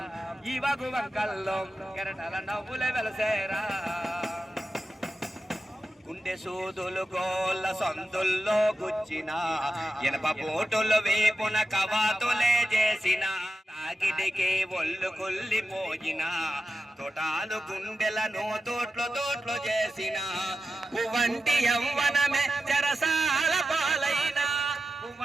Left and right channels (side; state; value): both; normal; correlation 0.91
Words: ఇవాగు వంకల్లో కెరటాల నవ్వులే వెలసేరా గుండె సూదులు గోళ్ళ సందుల్లో గుచ్చిన ఎనప పోటులు వేపున కవాతులే చేసిన తాకిడికి ఒళ్ళు కుల్లిపోయిన తోటాలు గుండెలను తోట్లు చేసిన పువ్వంటి యవ్వనమే చెరసాల పాలైన